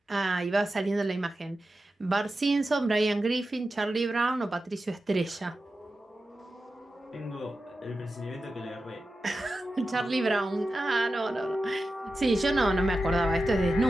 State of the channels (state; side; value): normal; both; correlation 0.92